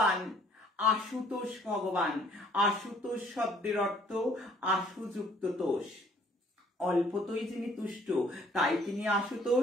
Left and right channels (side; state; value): both; normal; correlation 0.60